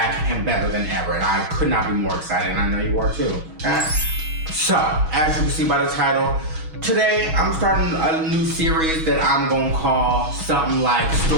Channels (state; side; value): late; left; 6.2 ms